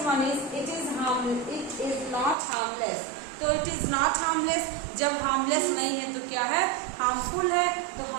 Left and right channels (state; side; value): drops out; left; at 2.4 s